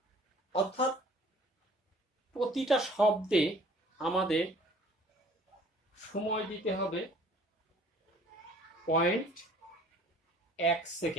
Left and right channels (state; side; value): normal; both; correlation 0.53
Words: অর্থাৎ প্রতিটা শব্দে আমাদের সময় দিতে হবে 0.1